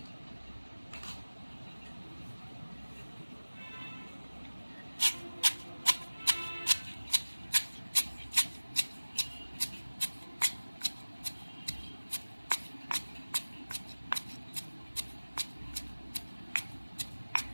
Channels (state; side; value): inverted; both; correlation -1.00